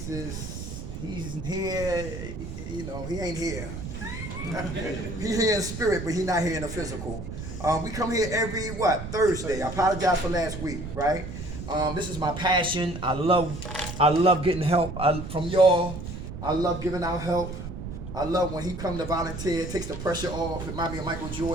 he's here. You know, he ain't here. He's here in spirit, but he's not here in the physical. We come here every, Thursday. I apologize for last week, right? This is my passion. I love getting help from y'all. I love giving out help. I love when he come to volunteer, takes the pressure off. It reminds me of Michael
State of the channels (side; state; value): right; noise; rumble, 8 dB below the sound